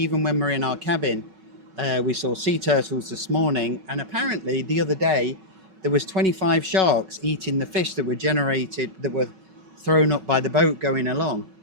we're in our cabin, we saw sea turtles this morning, and apparently the other day there was 25 sharks eating the fish that were thrown up by the boat going along,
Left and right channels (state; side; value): late; left; 5.3 ms